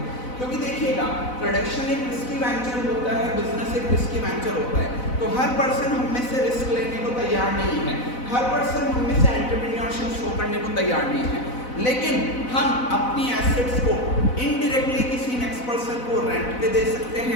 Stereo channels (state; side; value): late; right; 4.0 ms